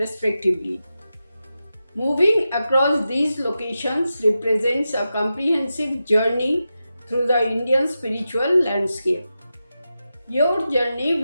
Moving across these locations represents a comprehensive journey through the Indian spiritual landscape. Your journey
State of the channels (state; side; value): inverted; both; correlation -0.91